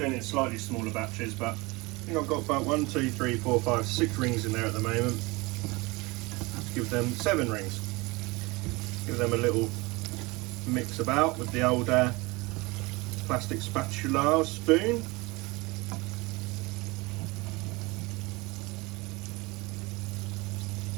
it in slightly smaller batches, but I think I've got about 1, 2, 3, 4, 5, 6 rings in there at the moment. Let's give them 7 rings. Give them a little mix about with the old plastic spatula or spoon.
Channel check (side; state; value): left; quieter; 24.3 dB